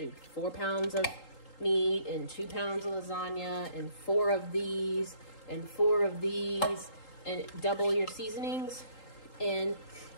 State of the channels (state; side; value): late; right; 3.8 ms